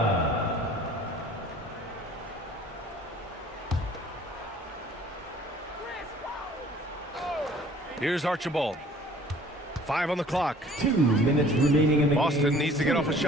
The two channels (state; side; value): normal; both; correlation 0.52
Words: Here's Archibald. 5 on the clock. 2 minutes remaining in the game. Boston needs to get off a